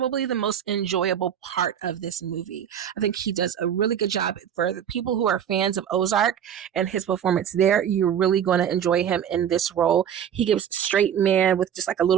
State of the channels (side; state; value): left; quieter; 9.1 dB